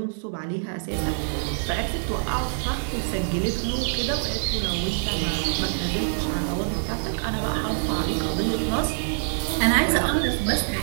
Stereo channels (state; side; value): silent; left; digital silence